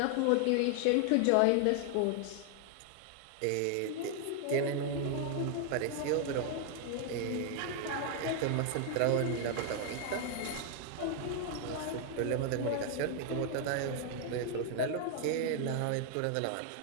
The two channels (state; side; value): different; both; correlation 0.00